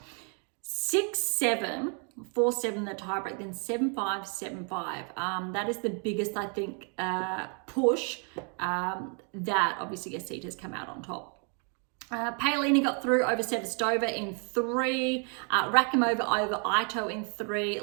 6-7, 4-7 the tiebreak, then 7-5, 7-5. That is the biggest, I think, push that obviously Asita has come out on top. Paolini got through over Sevastova in 3, Rakimova over Ito in 3,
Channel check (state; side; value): quieter; left; 38.9 dB